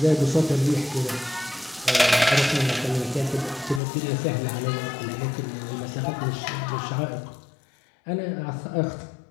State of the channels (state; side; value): drops out; right; at 3.8 s